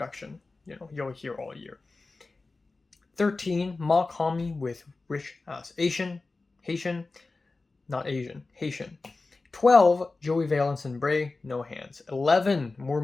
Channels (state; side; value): quieter; right; 3.6 dB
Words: you'll hear all year. 13, Mach-Hommy with RICHAXXHAITIAN, Haitian. 12, Joey Valence and Brae, No Hands. 11, More